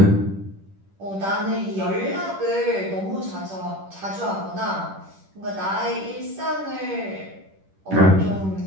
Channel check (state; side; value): late; left; 10 ms